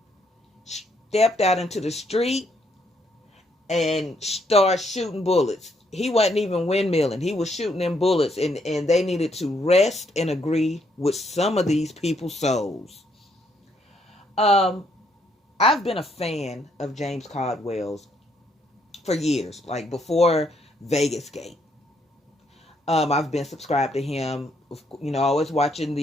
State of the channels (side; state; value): both; normal; correlation 0.72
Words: stepped out into the street, and started shooting bullets. He wasn't even windmilling. He was shooting them bullets, and they needed to rest and agree with some of these people's souls. Um, I've been a fan of James Caldwell's for years, like before Vegas Gate. I've been subscribed to him. Always watching